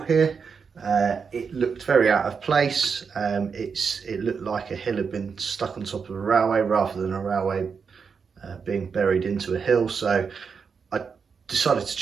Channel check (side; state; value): left; quieter; 5.9 dB